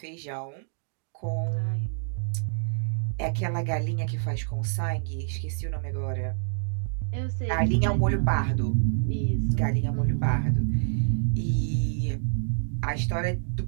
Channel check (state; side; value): silent; left; digital silence